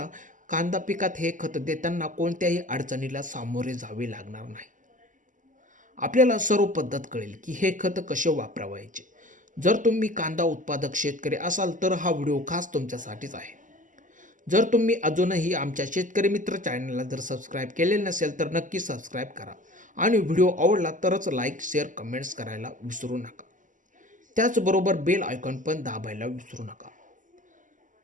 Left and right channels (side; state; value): left; late; 0.37 ms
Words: कांदा पिकात हे खत देताना कोणत्याही अडचणीला सामोरे जावे लागणार नाही. आपल्याला सर्व पद्धत कळेल की हे खत कसे वापरायचे. जर तुम्ही कांदा उत्पादक शेतकरी असाल तर हा व्हिडिओ खास तुमच्यासाठीच आहे. जर तुम्ही अजूनही आमच्या शेतकरी मित्र चॅनलला जर सबस्क्राईब केलेले नसेल तर नक्की सबस्क्राईब करा आणि व्हिडिओ आवडला तरच लाईक, शेअर, कमेंट्स करायला विसरू नका. त्याचबरोबर बेल आयकॉन पण दाबायला विसरू नका.